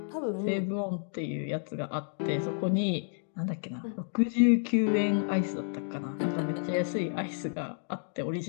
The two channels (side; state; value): right; silent; digital silence